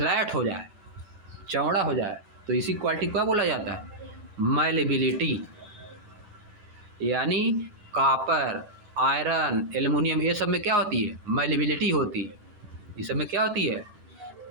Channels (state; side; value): late; left; 10 ms